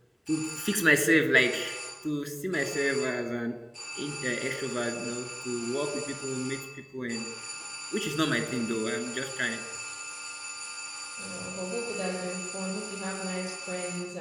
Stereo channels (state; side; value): identical; both; correlation 1.00